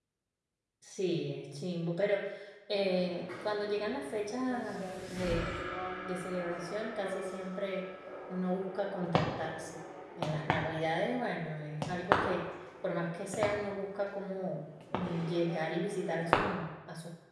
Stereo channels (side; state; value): both; identical; correlation 1.00